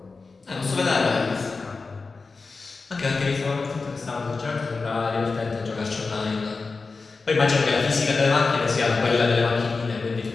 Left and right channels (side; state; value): right; quieter; 4.2 dB